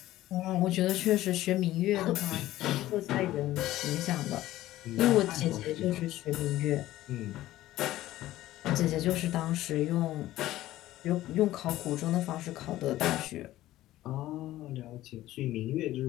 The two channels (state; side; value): quieter; right; 15.2 dB